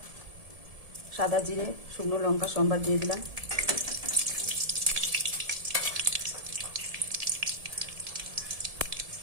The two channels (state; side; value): late; left; 1.7 ms